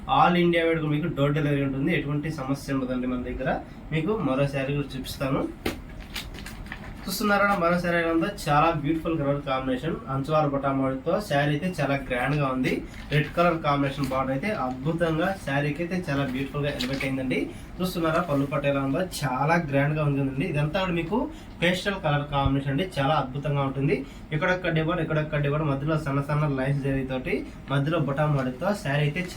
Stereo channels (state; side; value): identical; both; correlation 1.00